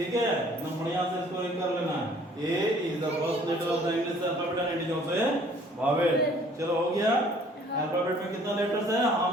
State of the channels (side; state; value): both; normal; correlation 0.56